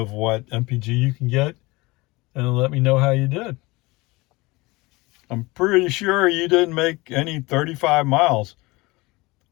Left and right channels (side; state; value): right; quieter; 22.9 dB